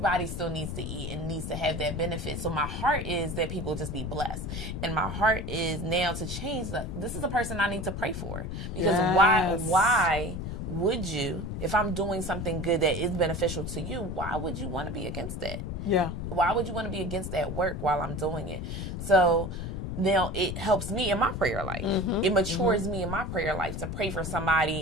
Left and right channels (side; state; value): left; noise; rumble, 5 dB below the sound